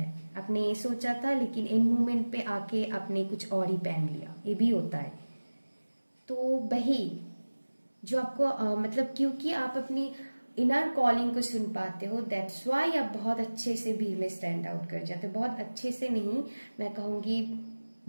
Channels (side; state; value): both; inverted; correlation -1.00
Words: आपने ये सोचा था लेकिन एंड मोमेंट पे आके आपने कुछ और ही पहन लिया, ये भी होता है। तो वही जो आपको मतलब क्योंकि आप अपनी इनर कॉलिंग को सुन पाते हो, दैट्स वाई आप बहुत अच्छे से भीड़ में स्टैंड आउट कर जाते हो, बहुत अच्छे से नहीं, मैं कहूंगी